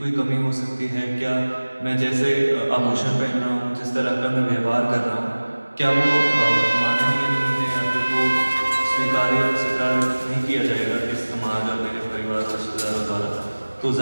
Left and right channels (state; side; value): inverted; both; correlation -1.00